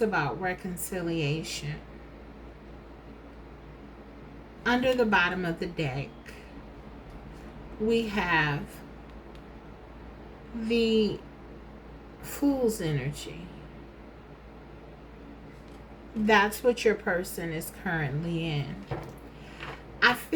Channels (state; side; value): identical; both; correlation 1.00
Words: reconciliation. Under the bottom of the deck, we have the Fool's energy. That's what your person is currently in. I